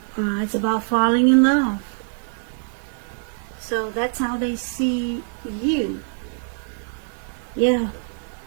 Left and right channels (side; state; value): left; silent; digital silence